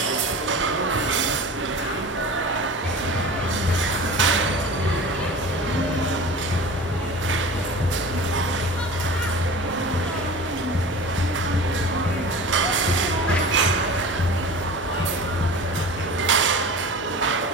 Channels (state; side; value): normal; both; correlation 0.36